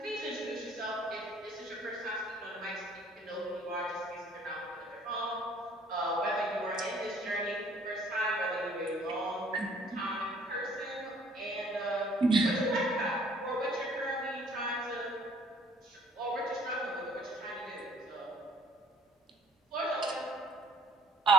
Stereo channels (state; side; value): normal; both; correlation 0.57